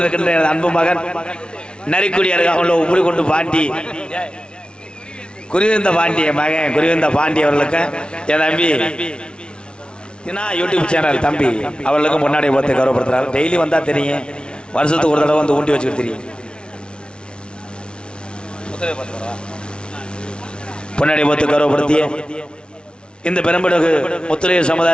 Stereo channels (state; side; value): late; right; 0.056 ms